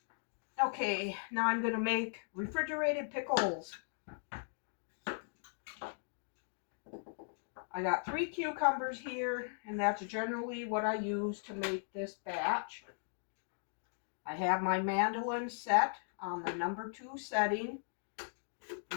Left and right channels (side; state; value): right; silent; digital silence